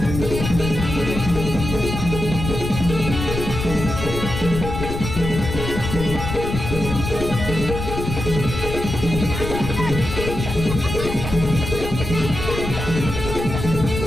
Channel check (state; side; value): noise; left; rumble, 5 dB below the sound